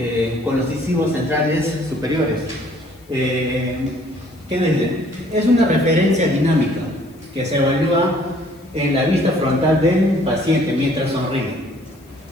con los incisivos centrales superiores. ¿Qué dice? Es una referencia dinámica que se evalúa en la vista frontal del paciente mientras sonríe.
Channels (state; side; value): noise; left; hiss, 30 dB below the sound